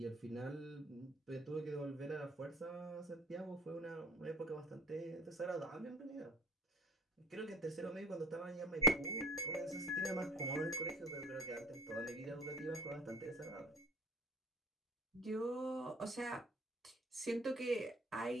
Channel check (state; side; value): normal; both; correlation 0.45